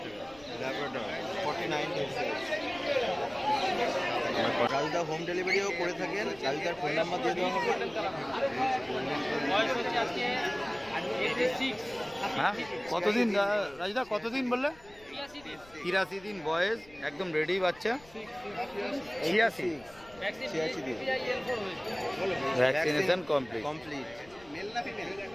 Labrador 49 days. কালদা হোম ডেলিভারিও করে থাকেন। কালদার ফোন নাম্বার দিয়ে দেওয়া হবে। বয়স হচ্ছে আজকে 86। হ্যাঁ, কতদিন রাজদা, কতদিন বললে? 83 দিন। 83 দিন বয়স, একদম রেডি বাচ্চা। 86 ভ্যাকসিন 86 দিন। হয়েছে। Vaccination complete. কমপ্লিট। মেল না ফিমেল?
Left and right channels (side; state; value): left; noise; rumble, 24 dB below the sound